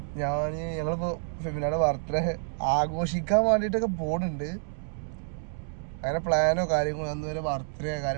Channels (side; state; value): left; silent; digital silence